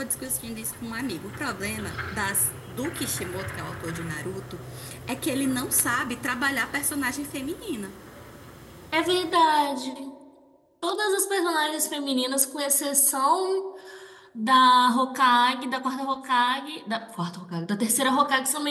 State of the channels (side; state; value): both; identical; correlation 1.00